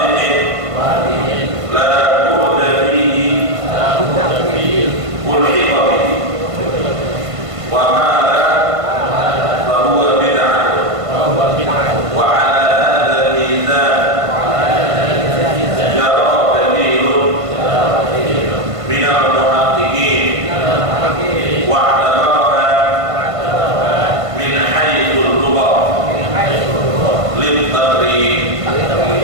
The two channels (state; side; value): late; left; 1.5 ms